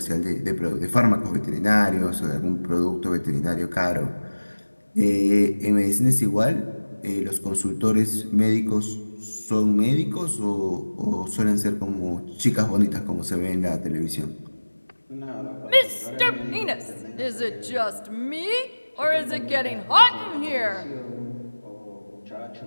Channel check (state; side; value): inverted; both; correlation -1.00